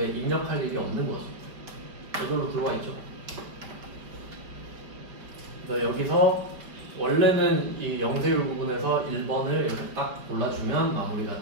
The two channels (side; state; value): left; late; 5.1 ms